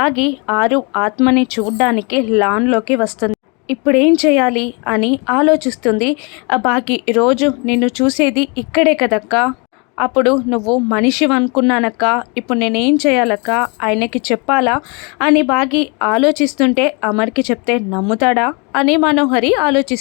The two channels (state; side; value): quieter; right; 31.9 dB